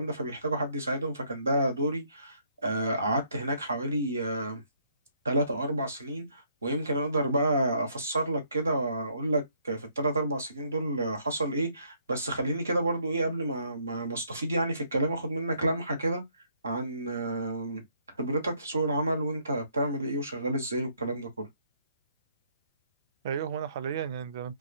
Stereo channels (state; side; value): inverted; both; correlation -0.68